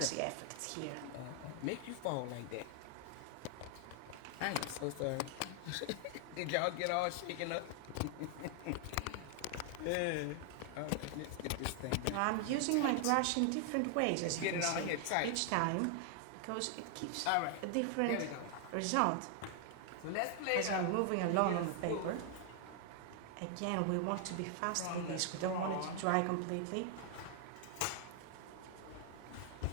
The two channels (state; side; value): different; both; correlation 0.00